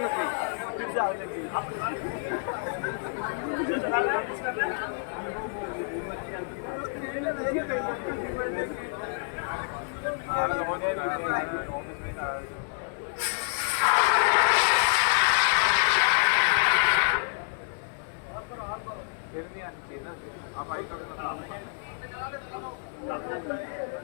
लगी, फिर से आग लगी। फिर नहीं आनी चाहिए ना, आप आई तो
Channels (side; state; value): right; silent; 59 dB below the other